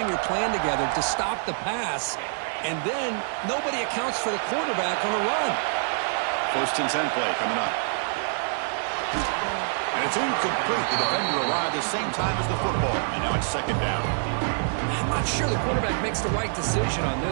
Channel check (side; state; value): left; silent; 58 dB below the other